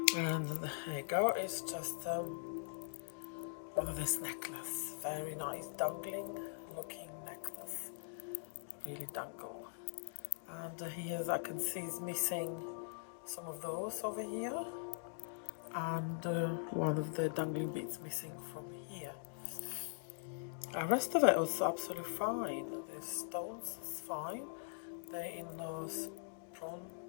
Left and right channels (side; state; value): right; silent; digital silence